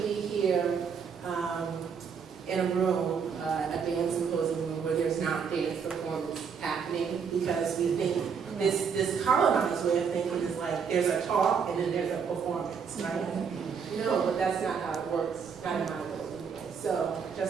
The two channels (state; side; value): quieter; left; 6.4 dB